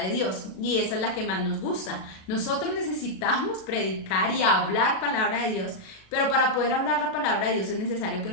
Dios, y esa es la que más nos gusta. Nosotros necesitamos predicar y hablar palabra de Dios, pero para poder hablar la palabra de Dios es necesario que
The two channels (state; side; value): late; right; 37 ms